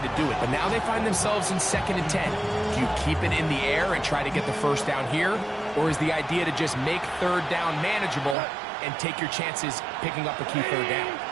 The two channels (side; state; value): left; drops out; at 8.3 s